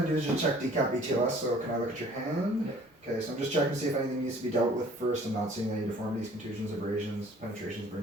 going to do is just check decap BTLS, so can I look at your hand? Yep. Okay, so I'm just checking to see if anything needs to be dealt with first. I'm not seeing any deformities, contusions, abrasions, penetrations,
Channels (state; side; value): normal; both; correlation 0.53